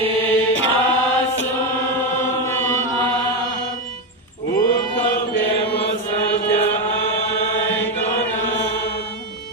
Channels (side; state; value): both; normal; correlation 0.12